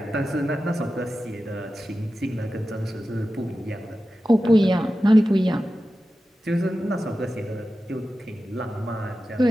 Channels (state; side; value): normal; both; correlation 0.93